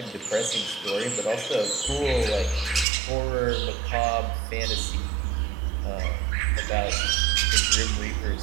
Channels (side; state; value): left; drops out; at 2.9 s